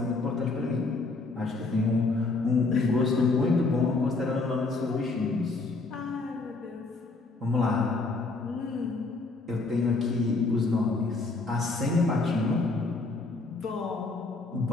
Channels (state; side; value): quieter; right; 3.6 dB